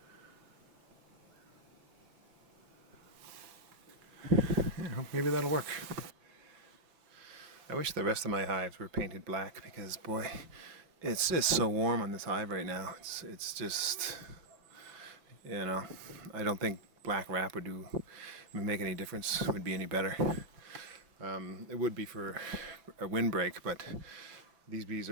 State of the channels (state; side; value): late; left; 6.2 ms